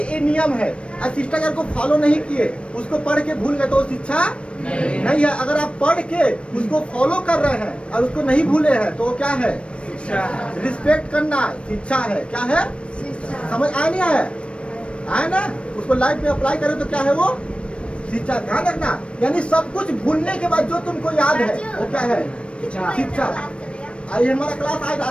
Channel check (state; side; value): late; right; 0.059 ms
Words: ये नियम है, और शिष्टाचार को फॉलो नहीं किए, उसको पढ़ के भूल गए तो वो शिक्षा नहीं है। अगर आप पढ़ के उसको फॉलो कर रहे हैं और उसको नहीं भूले हैं तो वो क्या है? रिस्पेक्ट करना शिक्षा है। क्या है? समझ आया नहीं है? आया ना? उसको लाइफ में अप्लाई करें तो क्या है वो? शिक्षा। ध्यान रखना, यानी सब कुछ भूलने के बाद जो तुमको याद है वो क्या है? शिक्षा। आइए हमारा क्लास आज